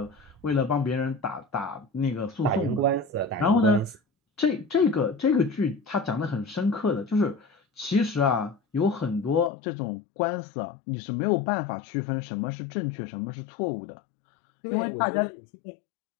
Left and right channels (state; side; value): drops out; right; at 9.5 s